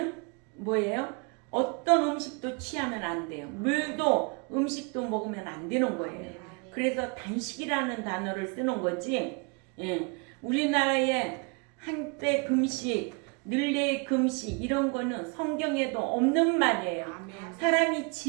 뭐예요? 어떤 음식도 취하면 안 돼요. 물도 음식도 먹으면 안 되는 거예요. 그래서 단식이라는 단어를 쓰는 거지. 예. 우리나라에 한때 금식, 늘레 금식 이런 거는 성경에도 없는 말이에요. 사람이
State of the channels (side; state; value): left; quieter; 32.9 dB